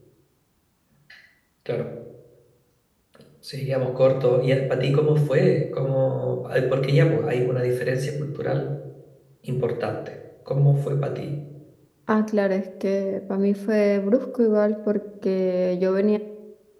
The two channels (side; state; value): both; identical; correlation 1.00